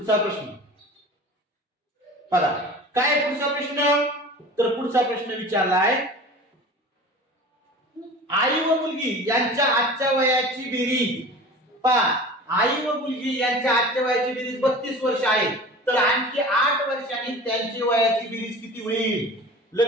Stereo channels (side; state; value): both; normal; correlation 0.38